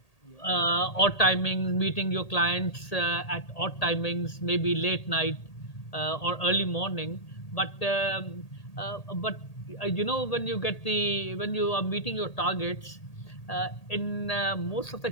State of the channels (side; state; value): right; late; 1.8 ms